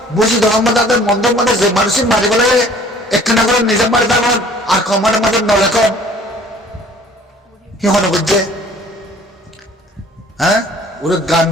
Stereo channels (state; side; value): normal; both; correlation 0.52